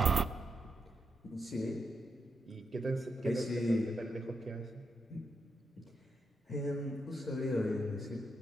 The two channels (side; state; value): both; normal; correlation 0.82